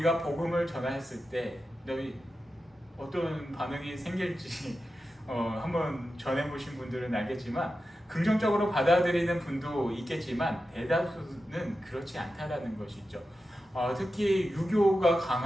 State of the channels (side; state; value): both; normal; correlation 0.91